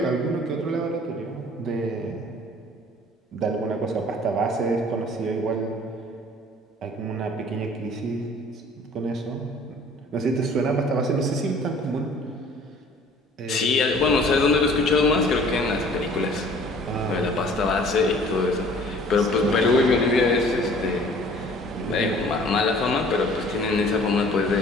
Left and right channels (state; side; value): normal; both; correlation 0.51